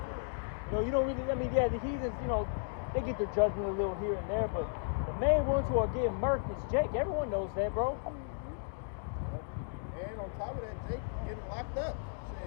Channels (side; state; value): right; silent; digital silence